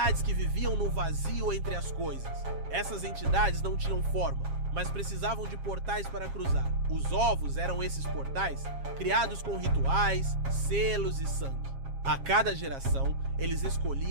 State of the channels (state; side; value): late; left; 7.4 ms